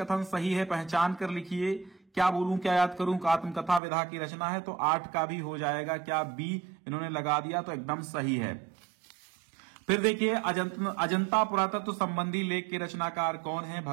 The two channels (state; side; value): drops out; left; at 3.8 s